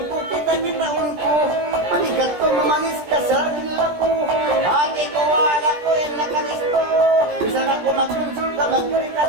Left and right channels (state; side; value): late; left; 17 ms